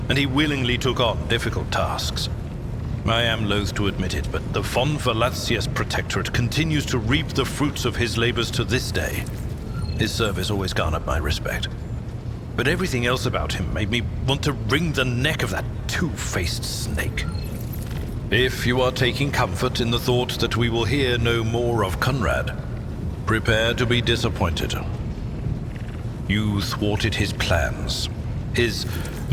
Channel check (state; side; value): identical; both; correlation 1.00